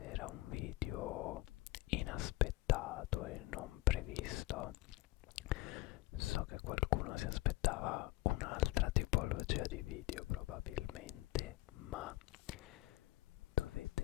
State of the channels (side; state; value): right; quieter; 18.7 dB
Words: un video inaspettato e non previsto. So che qualcuno si aspettava un'altra tipologia di video probabilmente, ma